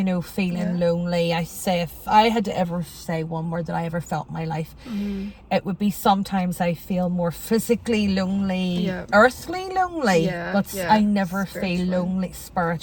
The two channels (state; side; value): identical; both; correlation 1.00